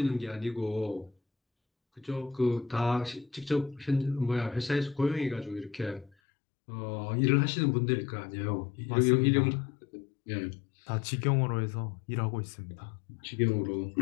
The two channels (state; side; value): drops out; right; at 6.1 s